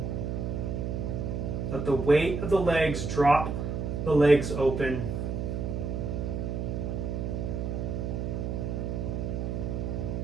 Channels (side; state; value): right; noise; hum, 2 dB below the sound